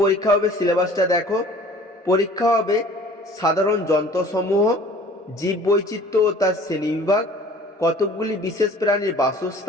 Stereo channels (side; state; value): both; normal; correlation 0.49